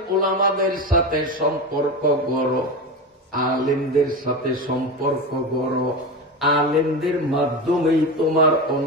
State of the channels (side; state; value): both; normal; correlation 0.22